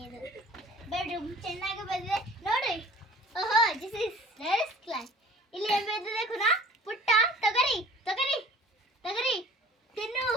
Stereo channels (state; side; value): normal; both; correlation 0.47